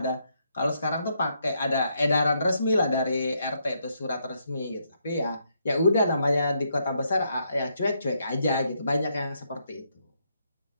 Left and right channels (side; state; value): both; inverted; correlation -0.76